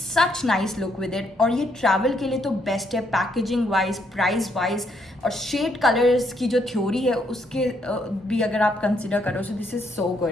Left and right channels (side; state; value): both; normal; correlation 0.73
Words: nice look with it. और ये ट्रैवल के लिए तो बेस्ट है, पैकेजिंग वाइज, प्राइस वाइज, और शेड कलर्स की जो थ्योरी है उसके भी अगर आप कंसिडर करो, सो दिस इज़ सो